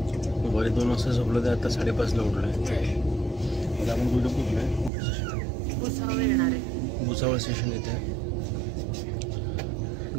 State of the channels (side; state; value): left; drops out; at 4.9 s